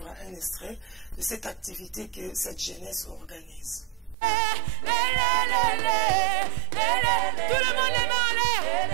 un extrait de cette activité que cette jeunesse organise. Tout le monde les mains en l'air.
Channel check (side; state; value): left; drops out; at 4.2 s